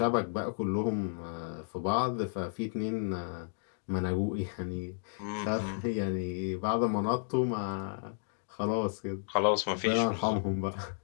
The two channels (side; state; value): right; silent; digital silence